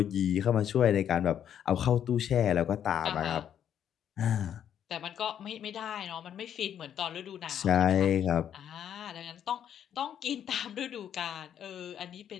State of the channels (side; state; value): right; quieter; 9.5 dB